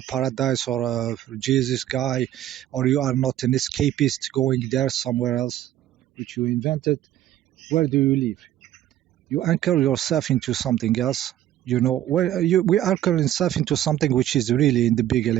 paradise or a Jesus guy, or you are not an escapist going there somewhere else, which you invented, where do you live? You anchor yourself into something else. You know, we anchor yourself into something which is really in the big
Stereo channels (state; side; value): quieter; left; 12.6 dB